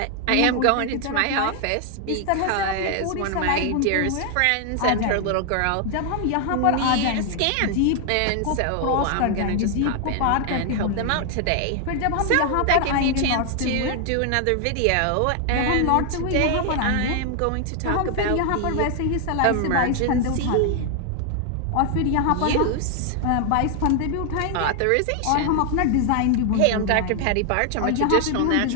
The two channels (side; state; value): both; different; correlation 0.00